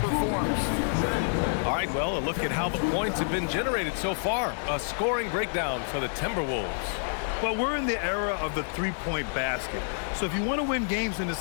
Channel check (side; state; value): right; silent; 59 dB below the other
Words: All right, well, a look at how the points have been generated so far. A scoring breakdown for the Timberwolves. Well, we're in the era of the three-point basket. So if you want to win games in